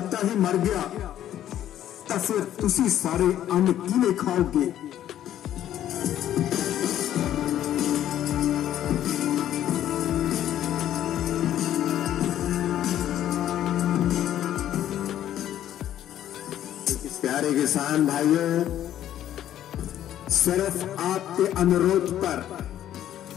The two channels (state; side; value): quieter; right; 11.6 dB